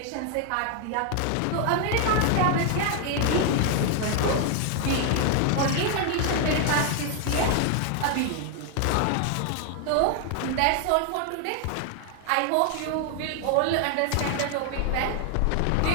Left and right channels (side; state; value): both; different; correlation 0.00